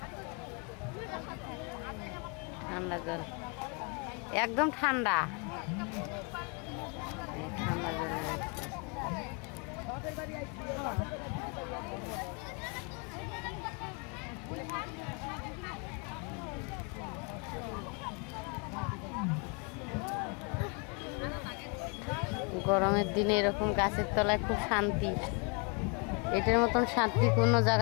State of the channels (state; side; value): quieter; right; 33.3 dB